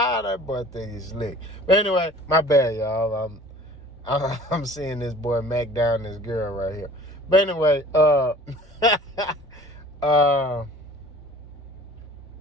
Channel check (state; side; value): normal; both; correlation 0.47